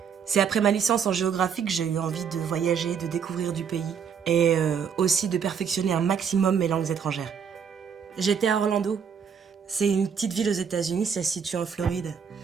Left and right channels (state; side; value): quieter; left; 7.0 dB